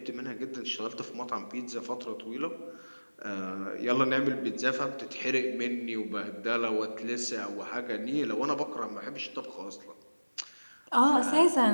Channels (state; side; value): inverted; both; correlation -1.00